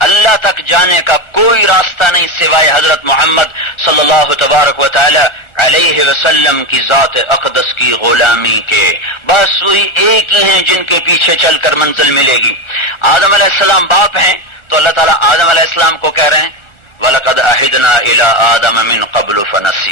اللہ تک جانے کا کوئی راستہ نہیں سوائے حضرت محمد صلی اللہ تبارک و تعالی علیہ وسلم کی ذات اقدس کی غلامی کے. بس وہی ایک ہی ہیں جن کے پیچھے چل کر منزل ملے گی. آدم علیہ السلام باپ ہیں تو اللہ تعالیٰ آدم علیہ السلام کو کہہ رہے ہیں وَلَقَدْ عَهِدْنَا إِلَىٰ آدَمَ مِن قَبْلُ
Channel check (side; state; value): right; late; 1.4 ms